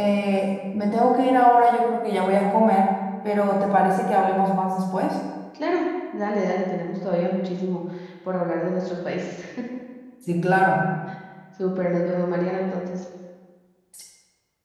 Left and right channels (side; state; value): both; identical; correlation 1.00